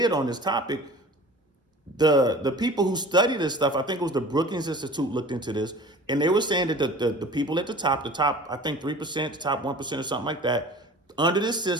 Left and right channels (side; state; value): both; normal; correlation 0.42